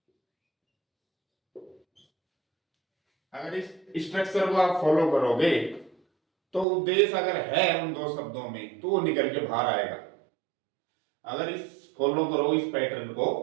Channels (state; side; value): drops out; left; at 6.7 s